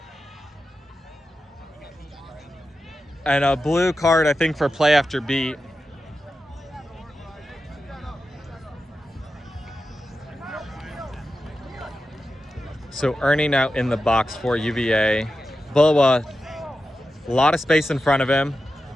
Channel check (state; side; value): normal; both; correlation 0.91